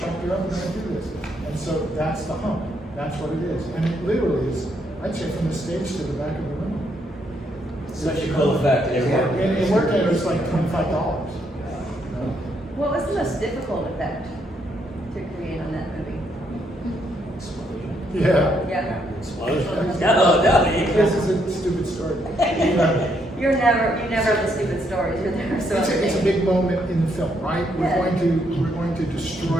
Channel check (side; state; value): both; normal; correlation 0.74